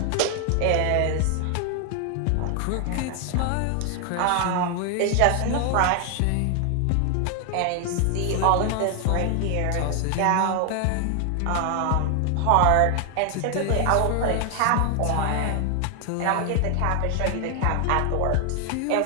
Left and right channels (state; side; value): different; both; correlation 0.00